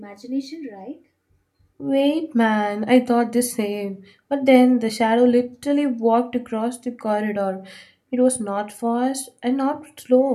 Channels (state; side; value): identical; both; correlation 1.00